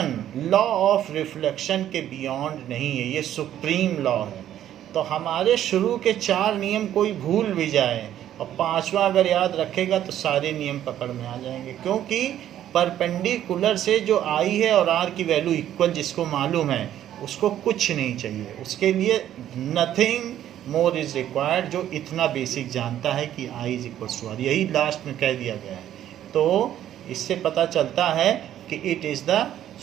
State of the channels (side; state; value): left; quieter; 11.5 dB